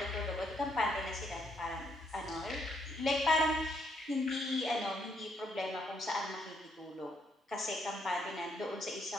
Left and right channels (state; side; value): normal; both; correlation 0.73